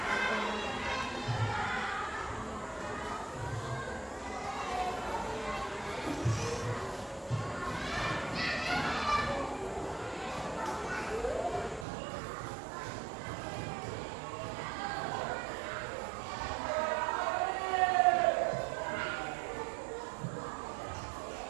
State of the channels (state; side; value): drops out; left; at 11.9 s